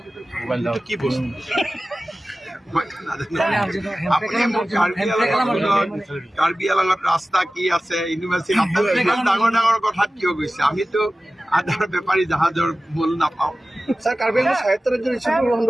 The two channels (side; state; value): both; normal; correlation 0.96